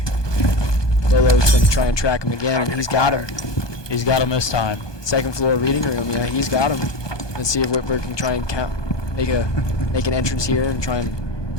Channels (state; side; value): late; right; 1.2 ms